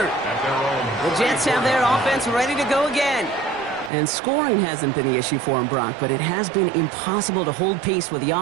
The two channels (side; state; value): left; drops out; at 3.9 s